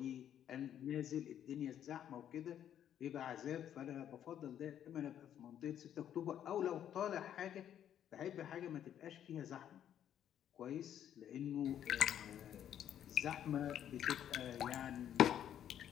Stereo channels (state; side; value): quieter; right; 10.1 dB